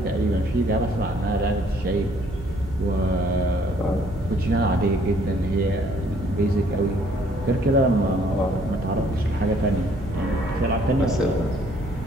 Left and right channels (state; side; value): noise; right; hum, 14 dB below the sound